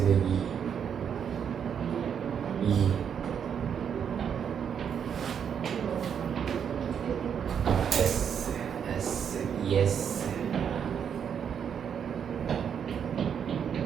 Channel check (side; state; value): left; quieter; 7.8 dB